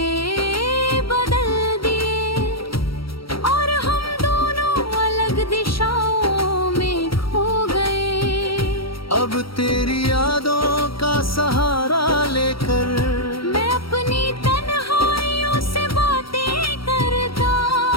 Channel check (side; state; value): right; late; 0.75 ms